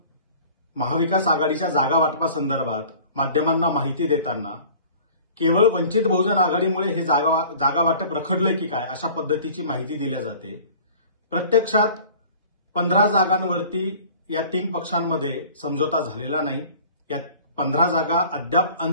महाविकास आघाडीच्या जागा वाटपासंदर्भात माध्यमांना माहिती देताना केवळ वंचित बहुजन आघाडीमुळे हे जागा वाटप रखडलंय की काय अशा पद्धतीची माहिती दिली जाते. प्रत्यक्षात 15 जागांवरती या 3 पक्षांमध्ये समझोता झालेला नाही. या 15 जागा अद्याप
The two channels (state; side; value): inverted; both; correlation -0.46